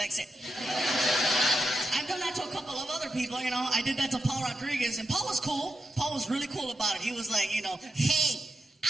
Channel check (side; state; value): both; normal; correlation 0.86